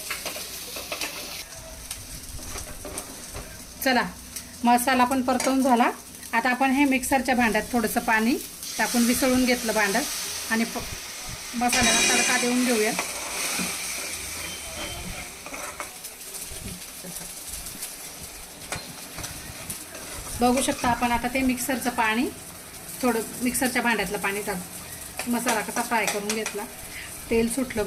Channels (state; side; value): identical; both; correlation 1.00